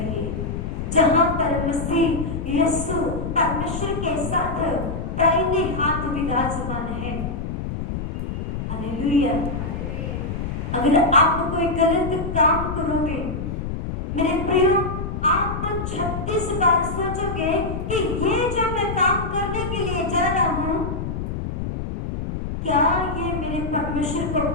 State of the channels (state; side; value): noise; left; rumble, 4 dB below the sound